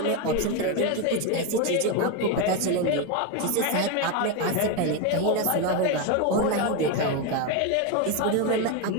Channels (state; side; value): different; both; correlation 0.03